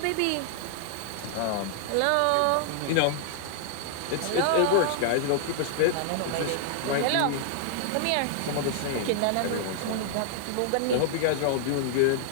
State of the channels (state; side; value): different; both; correlation -0.01